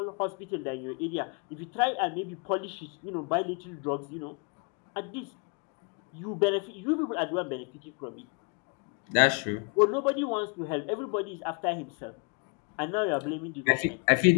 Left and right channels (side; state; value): right; quieter; 35.6 dB